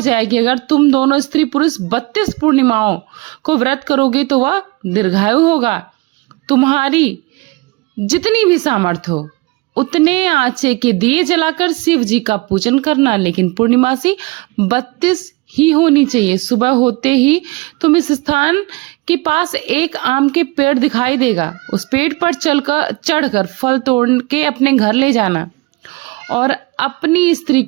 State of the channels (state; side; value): quieter; left; 24.2 dB